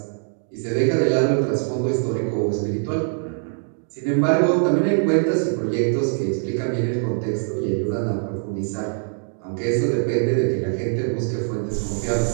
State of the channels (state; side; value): silent; left; 57 dB below the other